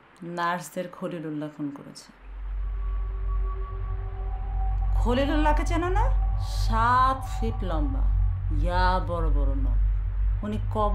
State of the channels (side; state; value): both; identical; correlation 1.00